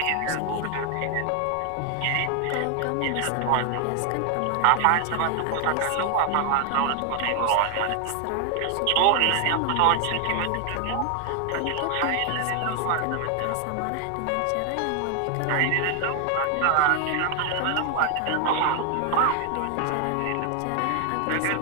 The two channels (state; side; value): different; both; correlation 0.00